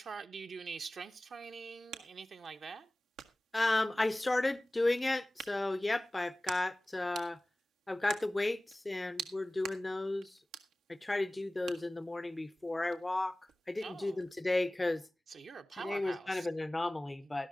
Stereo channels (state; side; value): normal; both; correlation 0.98